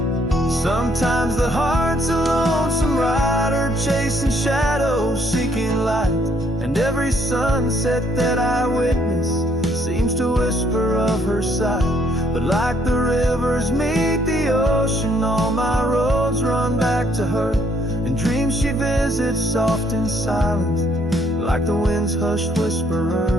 Sometimes the heart's a lonesome rider, chasing shadows, seeking light, and every sunset that I witness seems to whisper of her sight. But like the rivers meet the ocean, all my roads run back to her. In dreams she visits soft and silent, like the wind's hushed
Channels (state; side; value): normal; both; correlation 0.68